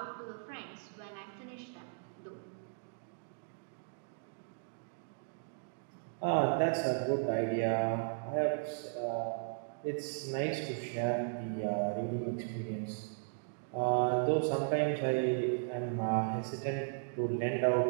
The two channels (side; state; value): left; silent; digital silence